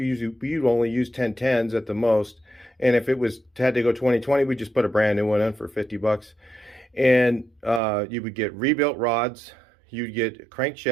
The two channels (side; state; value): left; drops out; at 7.8 s